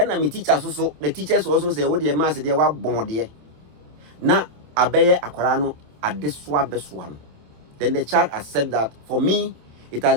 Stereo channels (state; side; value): late; left; 27 ms